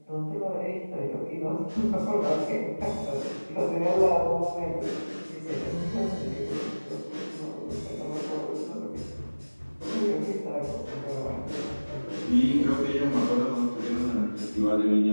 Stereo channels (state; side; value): inverted; both; correlation -1.00